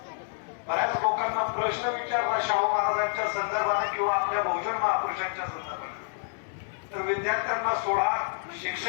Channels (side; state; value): right; silent; 59 dB below the other